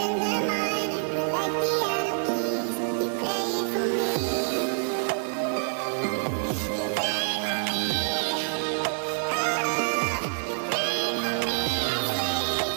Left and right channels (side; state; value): left; silent; digital silence